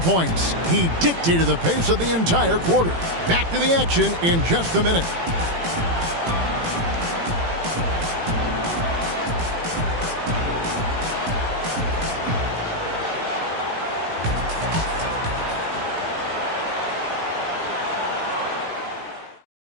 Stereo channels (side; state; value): left; late; 18 ms